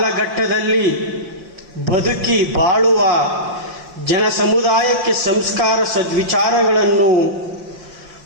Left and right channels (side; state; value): left; late; 5.7 ms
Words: ಬದುಕಿ ಬಾಳುವ ಜನ ಸಮುದಾಯಕ್ಕೆ ಸಂಸ್ಕಾರ ಸದ್ವಿಚಾರಗಳನ್ನು